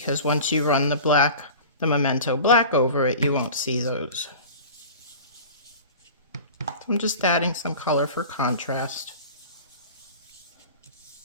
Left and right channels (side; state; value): both; inverted; correlation -0.38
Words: once you run the Memento black over it, you won't see those. So I'm just adding some color for contrast.